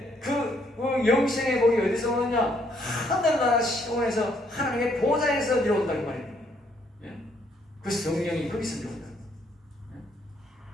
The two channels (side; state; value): both; normal; correlation 0.70